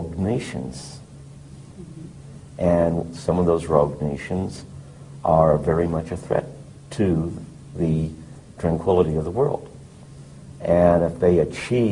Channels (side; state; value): both; identical; correlation 1.00